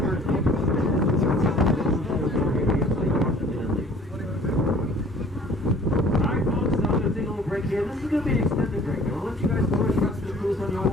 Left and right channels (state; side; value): normal; both; correlation 0.52